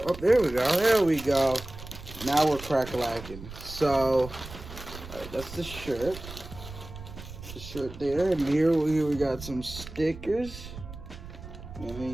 go, there we go. Now we're crack-a-lacking. So, alright, that's the shirt. The shirt there, and here we got some stickers. And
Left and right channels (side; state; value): right; noise; rumble, 13 dB below the sound